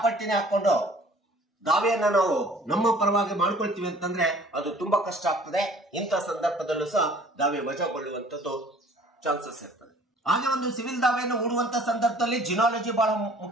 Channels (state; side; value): normal; both; correlation 0.52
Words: ಹಾಕೊಂಡು ದಾವೆಯನ್ನ ನಾವು ನಮ್ಮ ಪರವಾಗಿ ಮಾಡ್ಕೊಳ್ತೀವಿ ಅಂತಂದ್ರೆ ಅದು ತುಂಬಾ ಕಷ್ಟ ಆಗ್ತದೆ. ಇಂಥ ಸಂದರ್ಭದಲ್ಲೂ ಸಹ ದಾವೆ ವಜಾಗೊಳ್ಳುವಂತದ್ದು ಚಾನ್ಸಸ್ ಇರ್ತದೆ. ಹಾಗೆ ಒಂದು ಸಿವಿಲ್ ದಾವೆಯನ್ನು ಹೂಡುವಂತ ಸಂದರ್ಭದಲ್ಲಿ ಜಿನಾಲಜಿ ಬಹಳ